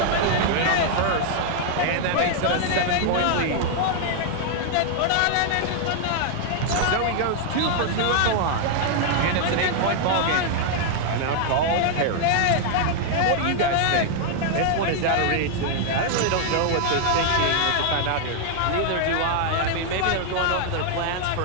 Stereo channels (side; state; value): both; different; correlation 0.00